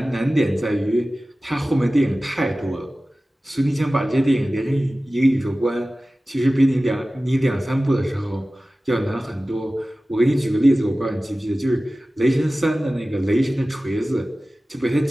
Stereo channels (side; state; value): both; normal; correlation 0.96